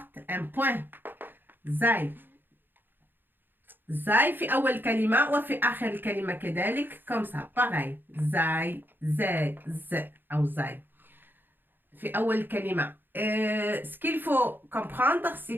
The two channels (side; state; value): left; late; 0.095 ms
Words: un point. زاي. زاي في أول كلمة وفي آخر الكلمة كذلك comme ça pareil. زاي زاي ز أو زاي في أول كلمة. Ce qu'il faut comprendre,